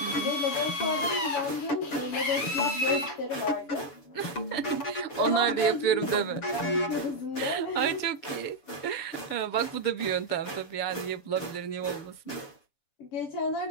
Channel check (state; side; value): late; right; 7.0 ms